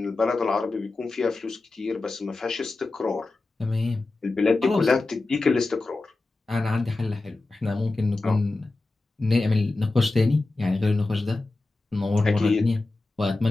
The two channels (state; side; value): quieter; right; 3.2 dB